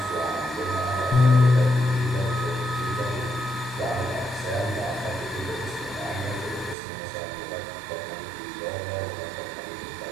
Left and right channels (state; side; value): drops out; left; at 6.8 s